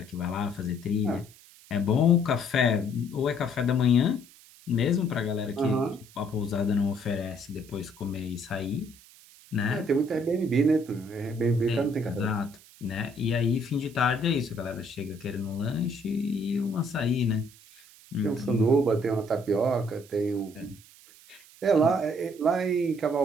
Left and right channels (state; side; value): noise; right; hiss, 23 dB below the sound